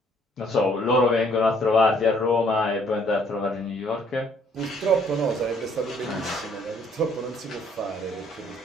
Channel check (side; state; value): both; normal; correlation 0.63